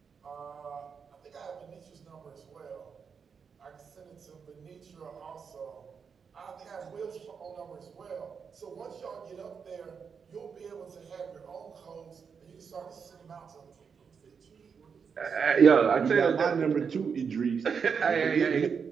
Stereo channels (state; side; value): quieter; left; 6.2 dB